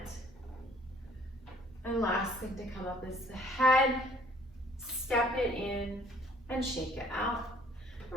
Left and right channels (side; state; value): both; normal; correlation 0.57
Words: And last thing to come up is the head. Step it in and shake it out.